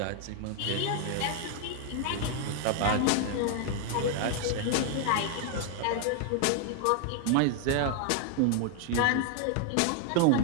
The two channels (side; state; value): both; different; correlation 0.00